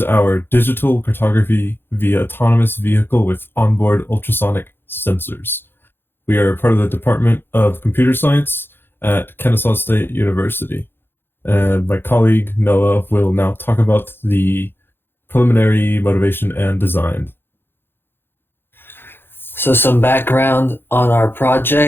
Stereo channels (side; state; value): right; late; 0.10 ms